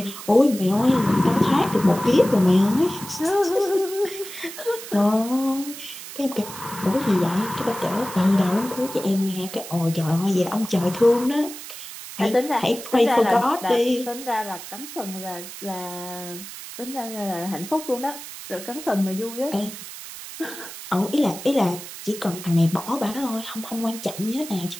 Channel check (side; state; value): right; noise; hiss, 12 dB below the sound